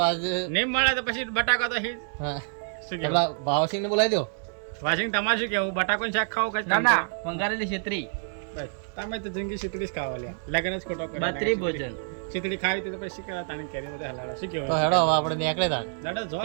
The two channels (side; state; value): left; silent; 60 dB below the other